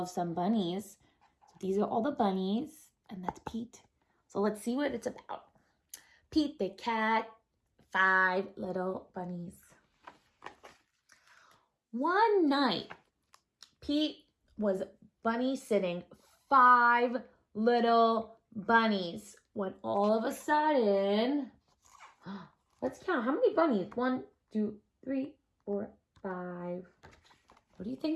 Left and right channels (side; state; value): both; identical; correlation 1.00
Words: some bunnies. So these are all the bunnies and that's Pete. So let's see what it's about. Pete the Cat, 5 little bunnies. One night, Pete was bunny sitting 5 little bunnies when all of a sudden, let's count. How many bunnies? 1, 2, 3, 4, 5. What do you